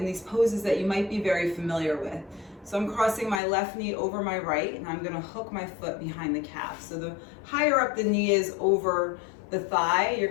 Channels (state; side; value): drops out; right; at 3.4 s